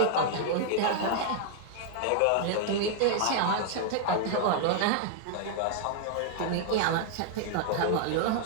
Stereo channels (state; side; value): different; both; correlation 0.00